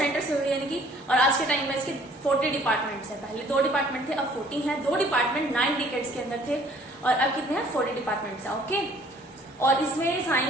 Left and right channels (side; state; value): both; normal; correlation 0.57